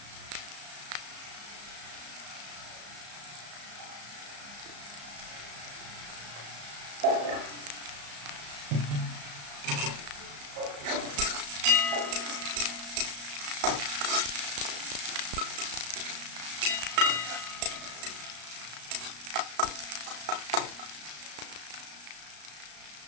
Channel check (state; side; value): late; left; 34 ms